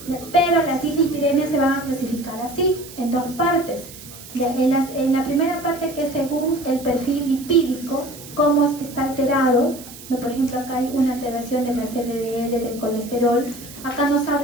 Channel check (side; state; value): right; noise; hiss, 16 dB below the sound